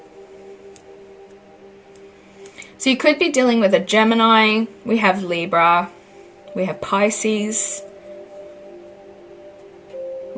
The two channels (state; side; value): identical; both; correlation 1.00